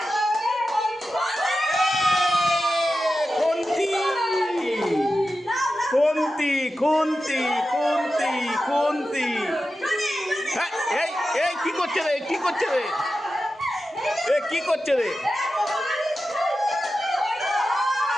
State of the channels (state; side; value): normal; both; correlation 0.92